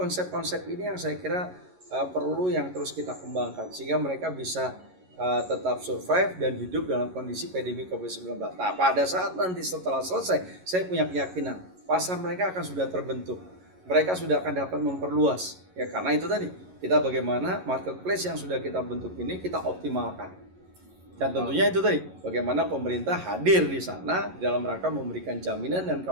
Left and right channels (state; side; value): late; left; 11 ms